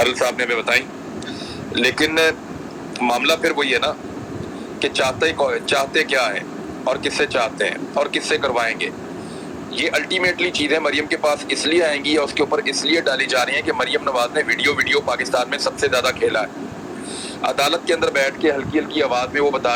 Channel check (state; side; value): identical; both; correlation 1.00